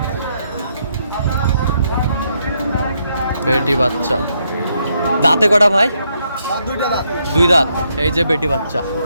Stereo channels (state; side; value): inverted; both; correlation -0.77